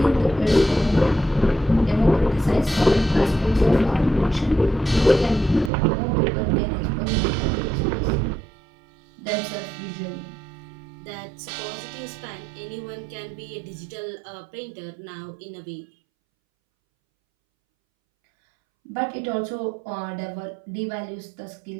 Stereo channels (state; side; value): drops out; left; at 5.7 s